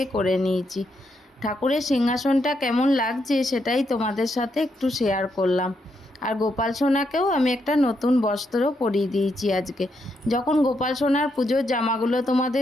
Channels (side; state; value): both; normal; correlation 0.79